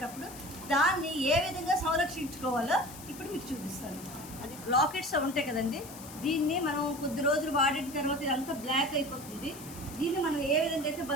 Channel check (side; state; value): left; noise; hiss, 15 dB below the sound